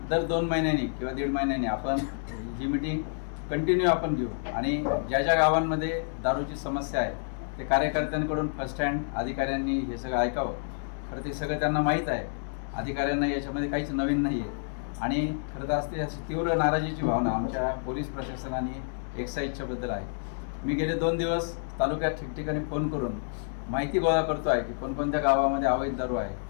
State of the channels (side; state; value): right; silent; digital silence